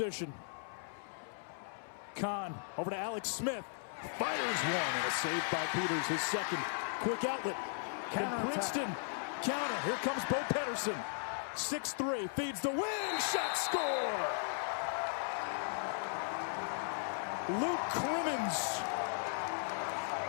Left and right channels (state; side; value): silent; right; 53 dB below the other